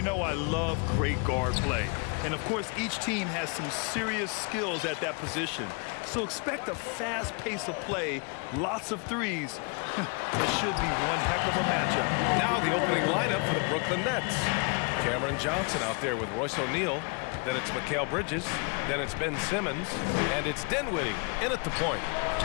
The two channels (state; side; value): quieter; right; 34.0 dB